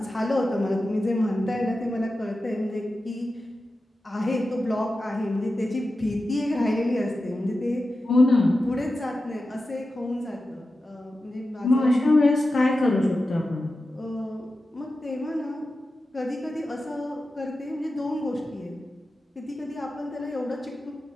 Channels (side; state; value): both; normal; correlation 0.92